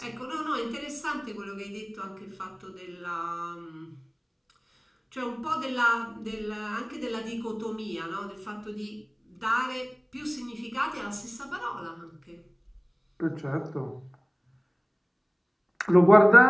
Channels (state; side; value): identical; both; correlation 1.00